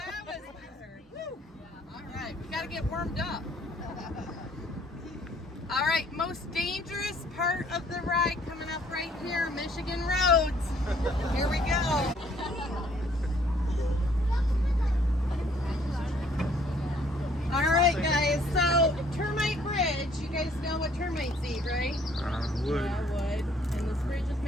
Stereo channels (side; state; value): both; normal; correlation 0.62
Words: was weird. Woo. All right, we got to get warmed up. All right, most dangerous part of the ride coming up right here, Michigan roads. Here we go. All right, guys, so Termite Bridge, you guys know what termites eat, right? Wood. Yeah, wood. And this bridge is